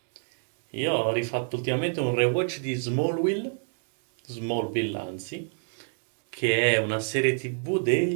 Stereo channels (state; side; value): silent; left; 59 dB below the other